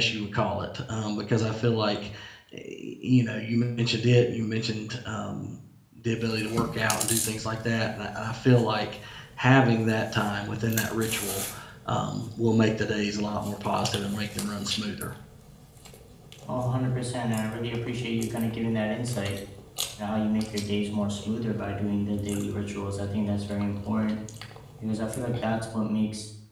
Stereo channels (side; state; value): both; identical; correlation 1.00